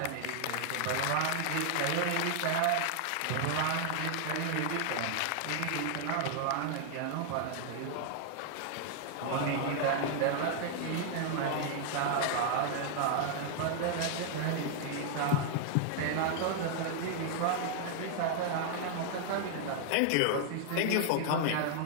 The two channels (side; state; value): both; different; correlation 0.00